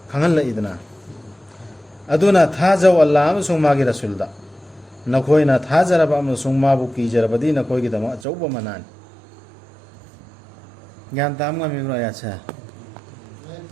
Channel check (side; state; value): left; drops out; at 8.2 s